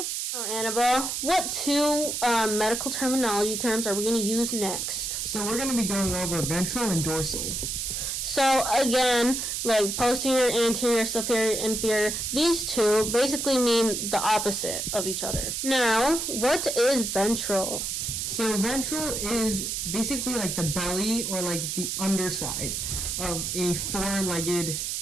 Now, Annabelle, what two medical terminology terms are we going to use next? So we're going to be going over ventral and dorsal. So, again, like posterior, anterior, superior, inferior, these two basically mean the opposite of each other. Now, what is ventral? So ventral is basically like the belly or like the underside of a four-legged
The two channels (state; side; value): noise; right; hiss, 2 dB below the sound